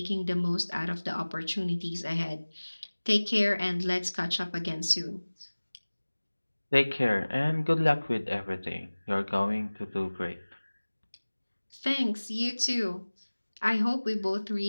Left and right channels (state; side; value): inverted; both; correlation -1.00